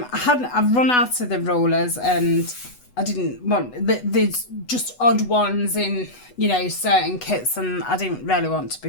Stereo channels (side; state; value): right; late; 8.1 ms